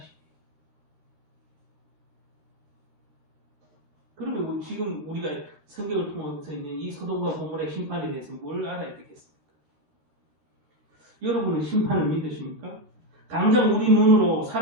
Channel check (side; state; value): left; late; 13 ms